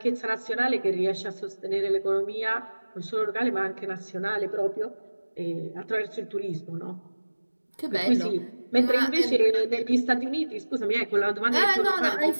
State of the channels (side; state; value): both; inverted; correlation -1.00